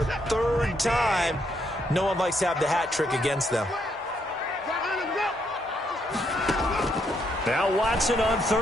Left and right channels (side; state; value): both; normal; correlation 0.75